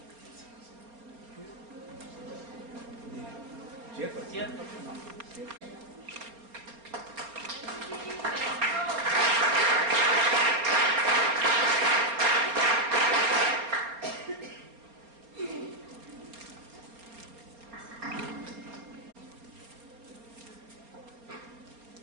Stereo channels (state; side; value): late; left; 4.3 ms